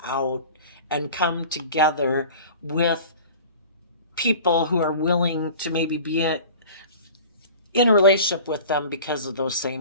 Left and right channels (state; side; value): inverted; both; correlation -0.41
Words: out and come together with people who are willing to maybe be in a relationship with them because of those